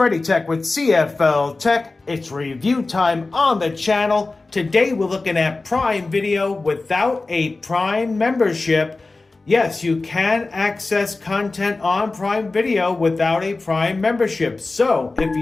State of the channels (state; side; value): quieter; right; 3.5 dB